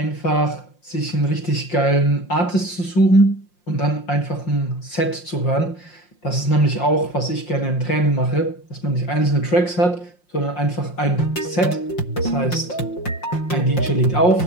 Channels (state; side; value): late; right; 5.6 ms